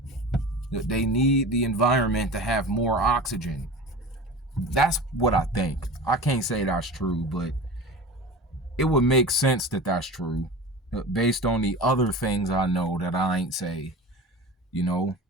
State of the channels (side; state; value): both; normal; correlation 0.34